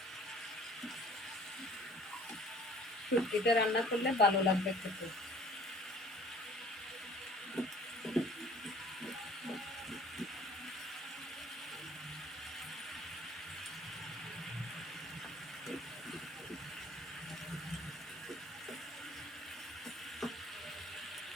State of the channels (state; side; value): normal; both; correlation 0.51